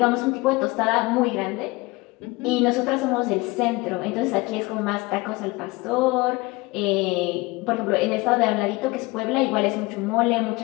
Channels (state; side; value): quieter; right; 23.3 dB